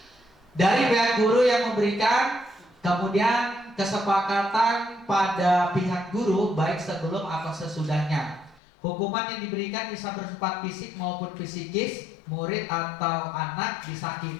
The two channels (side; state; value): right; drops out; at 8.6 s